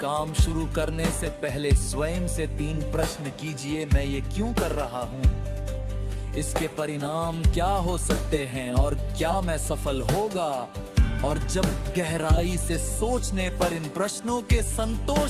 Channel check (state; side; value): identical; both; correlation 1.00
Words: शुरू करने से पहले स्वयं से 3 प्रश्न कीजिए। मैं ये क्यों कर रहा हूँ, इसके परिणाम क्या हो सकते हैं और क्या मैं सफल होगा। और जब गहराई से सोचने पर इन प्रश्नों के